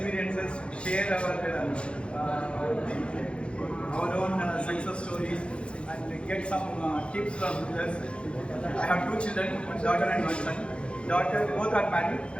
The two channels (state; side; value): late; right; 0.058 ms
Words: share our own success stories, and get some tips from others. I have 2 children, one daughter and one son. Daughter, both are married.